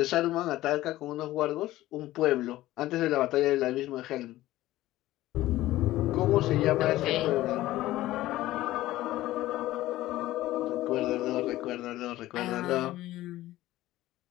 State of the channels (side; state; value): right; quieter; 16.0 dB